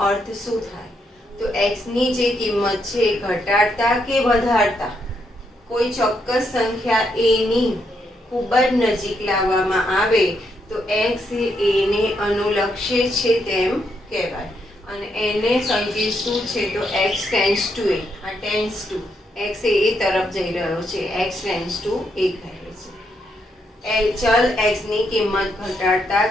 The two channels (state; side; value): normal; both; correlation 0.78